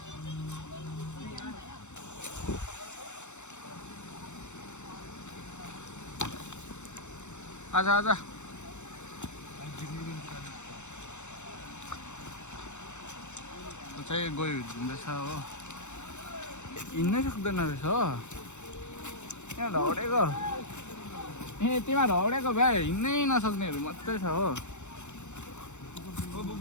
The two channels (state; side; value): late; right; 0.84 ms